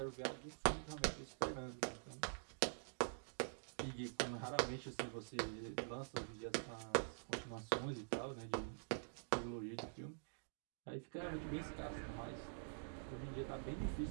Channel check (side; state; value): left; silent; digital silence